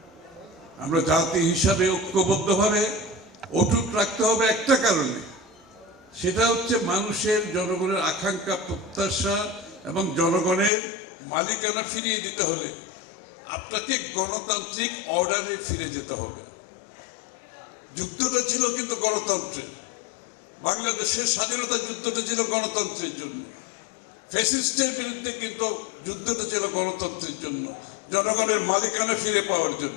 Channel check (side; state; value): right; drops out; at 10.7 s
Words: আমরা জাতি হিসাবে ঐক্যবদ্ধভাবে অটুট রাখতে হবে একটা কারণে, সেটা হচ্ছে মানুষের, জনগণের আকাঙ্ক্ষা, প্রত্যাশা এবং জনগণের মালিকানা ফিরিয়ে দিতে হলে আপনাকে গণতান্ত্রিক অর্ডারে ফিরে যেতে হবে। যুদ্ধটা ছিল কিন্তু গণতন্ত্রের, বাংলাদেশের স্বাধীনতা যুদ্ধটা ছিল গণতন্ত্রের জন্য, ফ্যাসিস্টের বিরুদ্ধে কিন্তু যুদ্ধটা ছিল গণতন্ত্রের জন্য, জনগণের মালিকানা ফিরে পাওয়ার